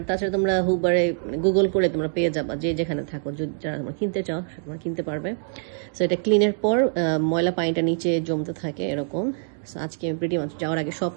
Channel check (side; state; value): left; silent; digital silence